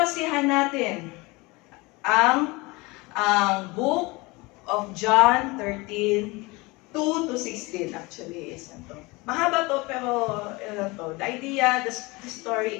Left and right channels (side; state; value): right; quieter; 24.1 dB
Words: natin ang book of John 13:2-16 actually is ito. Mahaba to pero the idea, the